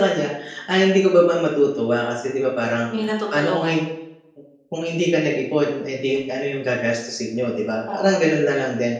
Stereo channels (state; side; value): identical; both; correlation 1.00